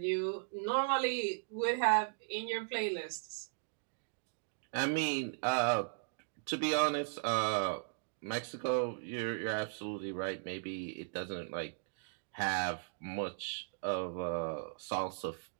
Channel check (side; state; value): left; silent; digital silence